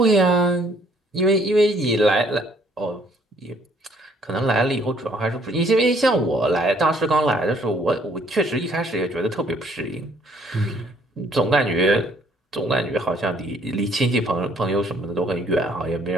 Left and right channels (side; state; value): both; normal; correlation 0.63